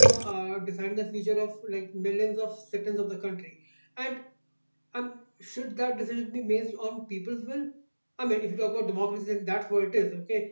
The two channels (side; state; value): both; inverted; correlation -1.00